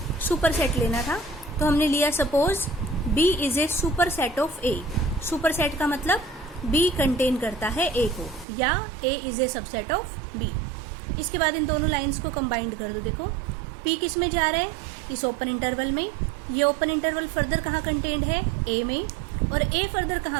सुपरसेट लेना था। तो हमने लिया suppose b is a superset of a। Superset का मतलब b कंटेन करता है a को, या a is a subset of b। इसके बाद इन दोनों लाइंस को कंबाइंड कर दो। देखो p किस में जा रहा है? इस ओपन इंटरवल में। ये ओपन इंटरवल फर्दर कहाँ कंटेन्ड है? a में। और a फर्दर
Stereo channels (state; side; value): drops out; left; at 8.5 s